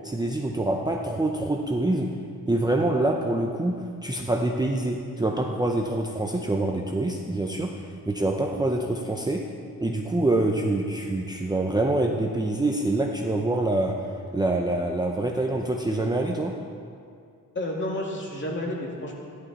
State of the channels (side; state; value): both; normal; correlation 0.69